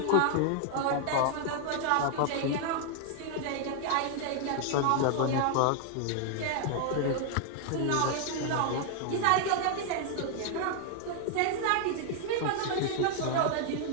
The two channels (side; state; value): both; different; correlation 0.00